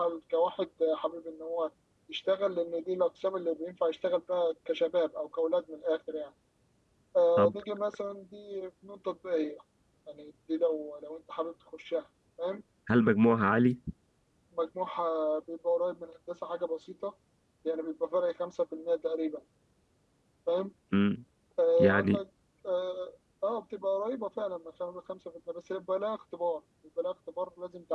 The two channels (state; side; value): identical; both; correlation 1.00